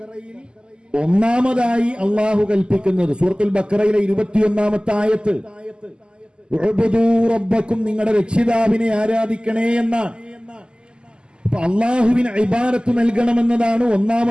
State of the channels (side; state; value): left; late; 0.048 ms